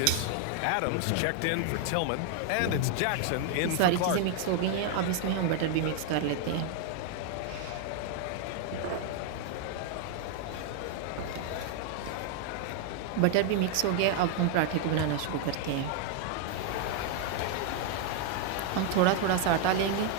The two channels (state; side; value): different; both; correlation 0.00